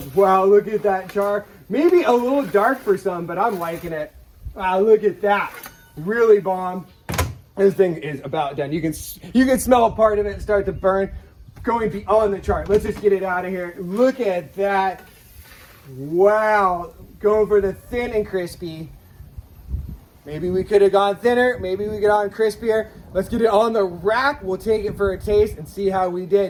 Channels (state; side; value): identical; both; correlation 1.00